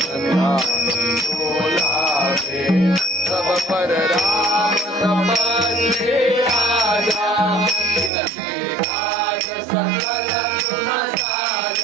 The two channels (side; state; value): left; drops out; at 8.1 s